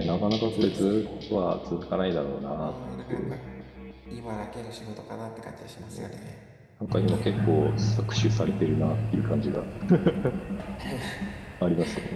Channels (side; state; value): both; identical; correlation 1.00